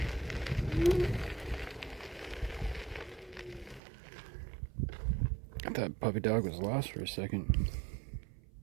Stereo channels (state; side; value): drops out; left; at 3.8 s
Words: I thought puppy dog was lost for a second.